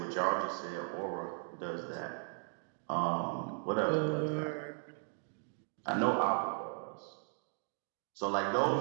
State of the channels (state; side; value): silent; left; 53 dB below the other